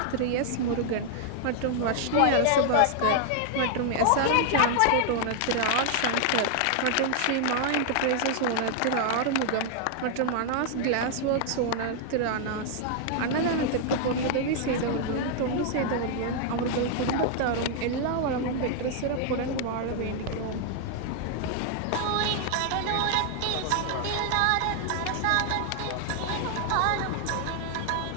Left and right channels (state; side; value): different; both; correlation 0.00